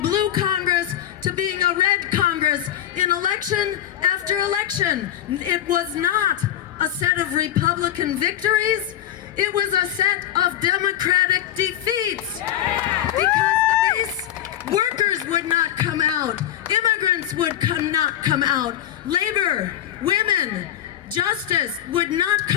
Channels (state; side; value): quieter; right; 11.5 dB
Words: Congress to being a red Congress in election after election. It was not a set of Republican victories. It was a set of Democratic defeats. Because the base workers would not come out. Immigrants would not come out. Labor, women, justice would not